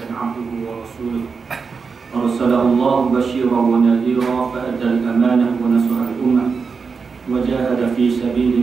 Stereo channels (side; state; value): left; quieter; 5.2 dB